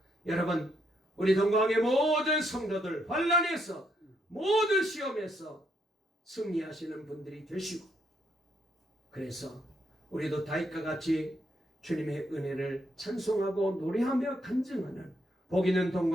여러분, 우리 동광의 모든 성도들 환란에서, 모든 시험에서 승리하시는 분들이 되시고, 그래서 우리도 다윗과 같이 주님의 은혜를 찬송하고 노래하며 간증하는 복 있는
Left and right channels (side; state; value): both; normal; correlation 0.75